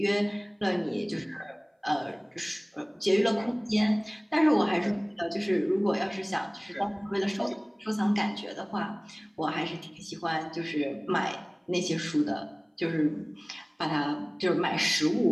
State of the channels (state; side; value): identical; both; correlation 1.00